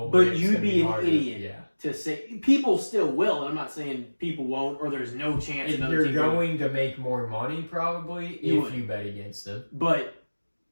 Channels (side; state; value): both; inverted; correlation -1.00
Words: But you'd be an idiot to say people still will, and I'm not saying people won't or there's no chance another team. You're going to make more money probably if you bet against them. But